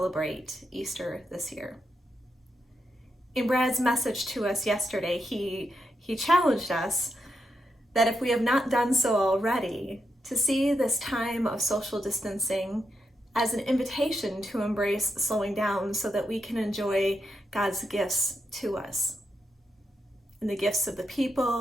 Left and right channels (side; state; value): both; normal; correlation 0.84